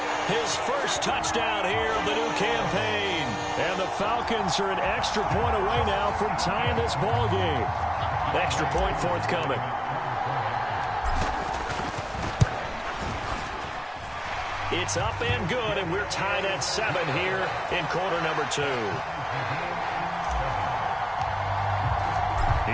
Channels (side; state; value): both; identical; correlation 1.00